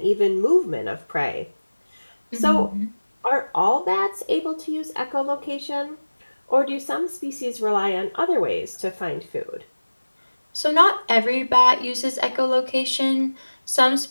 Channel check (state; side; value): inverted; both; correlation -1.00